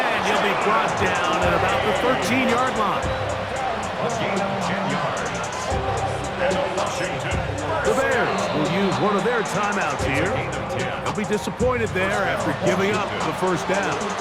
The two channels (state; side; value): identical; both; correlation 1.00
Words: he'll be brought down at about the 13-yard line. A gain of 10 yards. And Washington. The Bears will use one of their timeouts here. Gain of 10. They'll be disappointed there after giving up the first down.